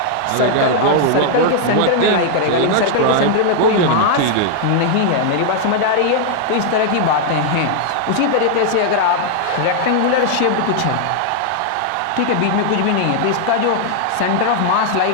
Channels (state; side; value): different; both; correlation -0.01